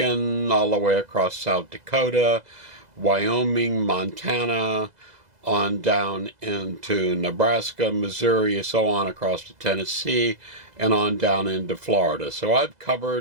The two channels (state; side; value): late; left; 2.0 ms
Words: all the way across South Dakota, Wyoming, Montana, on down into Nebraska, Missouri, so on across to Tennessee, and on down into Florida. So I've